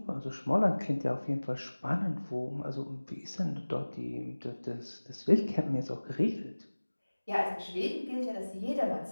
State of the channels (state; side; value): inverted; both; correlation -1.00